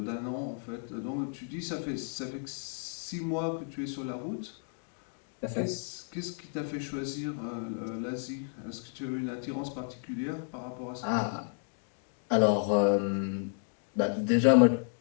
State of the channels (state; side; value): silent; right; 56 dB below the other